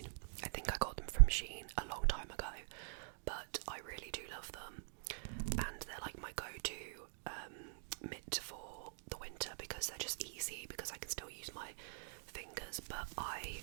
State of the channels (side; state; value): left; silent; digital silence